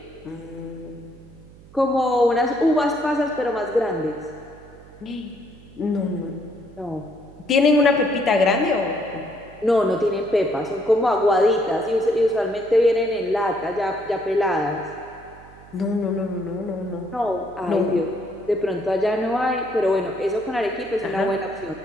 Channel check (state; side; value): noise; right; hum, 22 dB below the sound